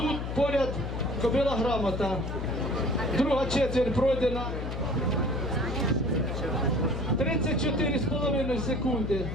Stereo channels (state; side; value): noise; left; hum, 4 dB below the sound